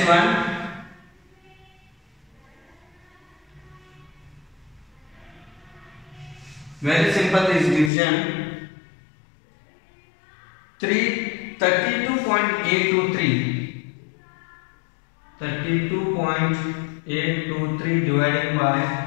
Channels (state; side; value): drops out; right; at 7.9 s